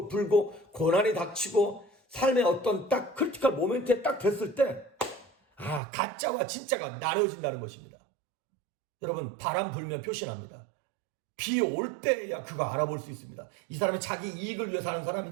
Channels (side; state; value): left; drops out; at 5.8 s